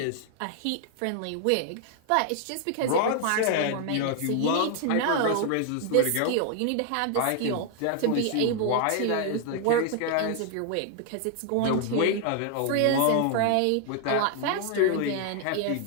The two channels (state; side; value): different; both; correlation 0.00